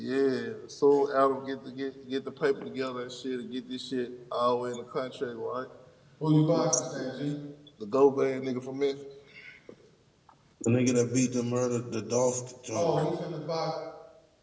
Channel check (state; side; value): identical; both; correlation 1.00